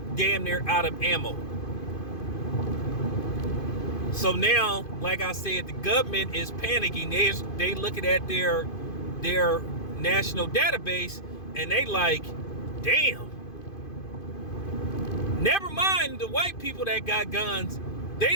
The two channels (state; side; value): late; right; 2.5 ms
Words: damn near out of ammo. So now, like I said, the government is panicking. They looking at their national database, and they like, damn. Never mind the white people that got guns. They